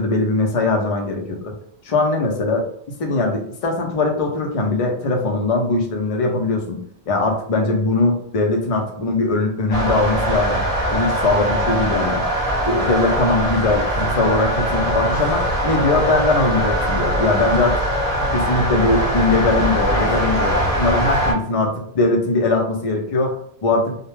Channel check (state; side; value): normal; both; correlation -0.01